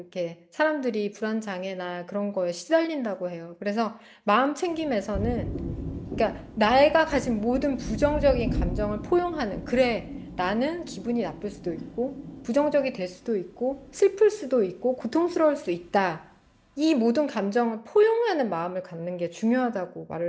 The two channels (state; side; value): identical; both; correlation 1.00